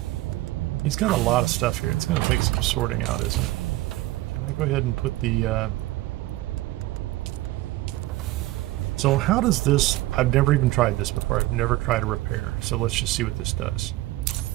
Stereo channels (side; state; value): left; quieter; 17.7 dB